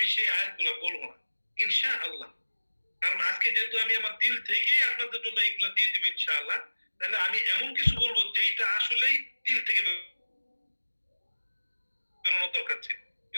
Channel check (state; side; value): inverted; both; correlation -1.00